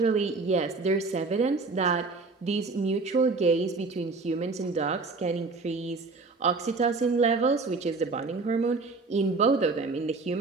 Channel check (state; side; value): quieter; left; 3.9 dB